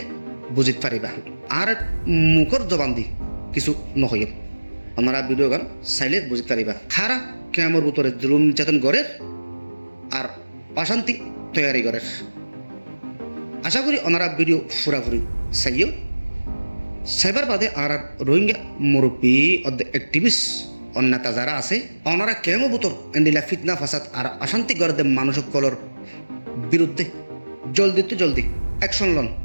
বুঝিত পারিবা আর মুখর জবান দি কিছু নহইব। আমরা ভিডিও গান চাইলে বুঝিত পারিবা খারা ক্যামর ভিতরে জুলুম নির্যাতন গড়ের আর অশান্তি তৈরি গড়ের। আশা করি ওনারা ভিডিও ফুরাফুরি চাইও সাইবার বাদে আর রোহিঙ্গা মুরব্বী অ্যাক্টিভিস্ট অন্যতা যারা আছে ওনারা কেমো বুতর এন্ডিলা ফিতনা ফাসাদ আর অশান্তি গড়ে মানুষসকলের বিরুদ্ধে জলদি অ্যাকশন লন।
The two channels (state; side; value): inverted; both; correlation -1.00